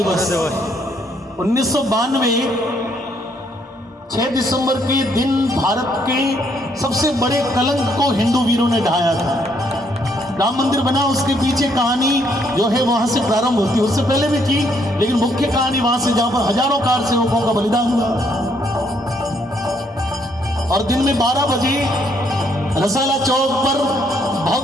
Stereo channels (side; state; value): both; normal; correlation 0.70